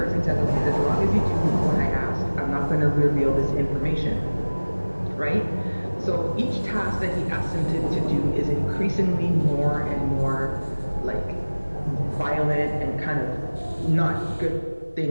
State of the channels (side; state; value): both; inverted; correlation -1.00